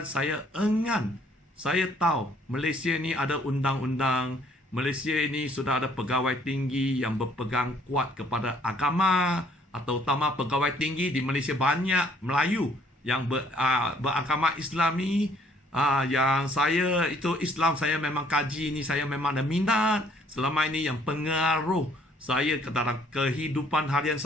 saya enggan, saya tahu Malaysia ni ada undang-undang, Malaysia ini sudah ada pegawai tinggi yang berpegang kuat kepada agama, atau utama pegawai tinggi di Malaysia banyak Melayu yang beragama Islami. Yang saya itu Islam, saya memang kaji ni, saya memang ada minat. Selama ini yang pengaruh saya ke dalam kehidupan harian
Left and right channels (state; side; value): normal; both; correlation 0.62